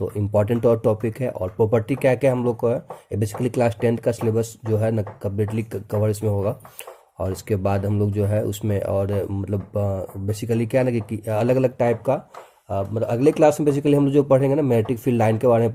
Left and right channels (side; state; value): both; identical; correlation 1.00